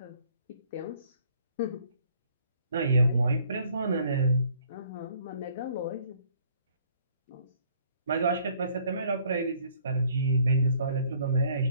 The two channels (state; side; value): inverted; both; correlation -0.61